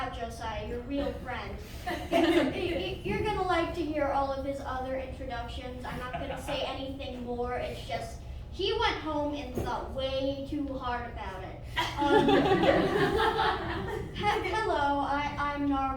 Josiah, your real friend. You're going to like to hear all of his other introductions. I'm not going to say anything more. It's just, he went home and thought way too hard about it. Hello, I'm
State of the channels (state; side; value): identical; both; correlation 1.00